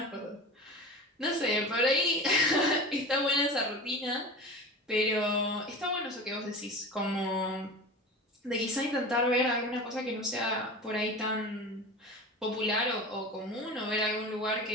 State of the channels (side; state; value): both; normal; correlation 0.32